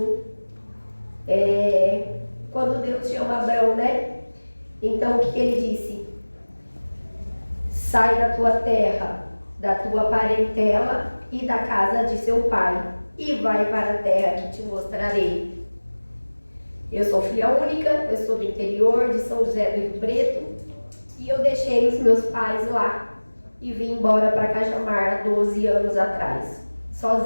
Quando Deus chama Abrão, né? Então o que ele disse? Sai da tua terra, da tua parentela e da casa de seu pai, e vai para a terra que te mostrarei. Eu sou filha única, eu sou do interior de São José do Rio Preto, e eu deixei os meus pais lá e vim embora para Cajamar há 12 anos atrás,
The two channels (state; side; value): inverted; both; correlation -1.00